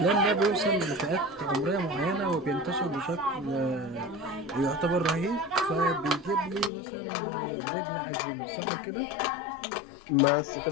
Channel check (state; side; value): drops out; right; at 6.7 s